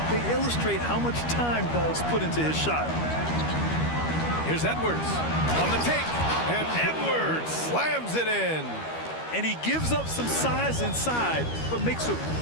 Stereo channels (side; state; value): right; late; 13 ms